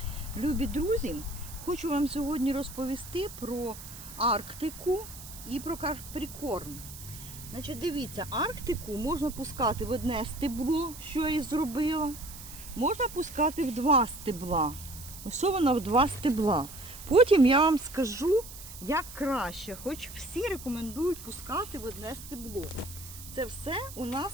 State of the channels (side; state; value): right; noise; hiss, 14 dB below the sound